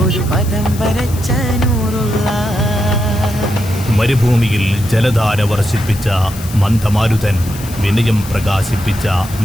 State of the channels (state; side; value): noise; left; hiss, 15 dB below the sound